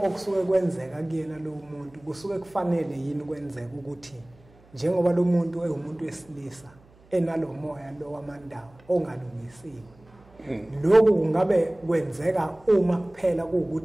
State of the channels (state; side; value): noise; right; hum, 28 dB below the sound